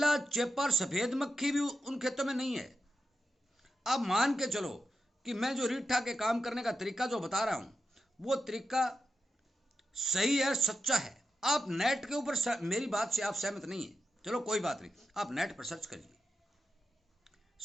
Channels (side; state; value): both; normal; correlation 0.89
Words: चेपर, सफेद मक्खी भी उन खेतों में नहीं है। अब मान के चलो कि मैं जो रीठा के काम करने का तरीका जो बता रहा हूं वो तरीका सही है, सच्चा है। आप नेट के ऊपर, मेरी बात से आप सहमत नहीं है, चलो कोई बात नहीं, आप नेट पर सर्च